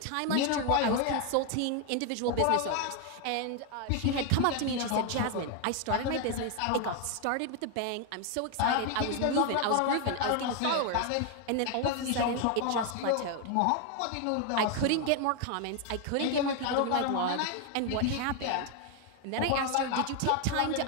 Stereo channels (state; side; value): different; both; correlation 0.01